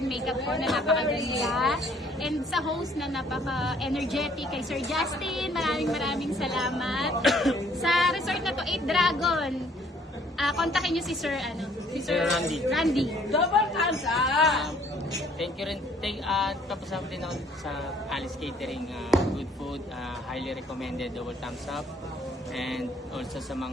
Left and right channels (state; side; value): normal; both; correlation 0.62